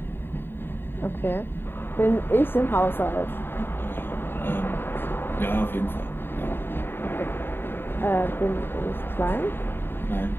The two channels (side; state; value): right; late; 0.10 ms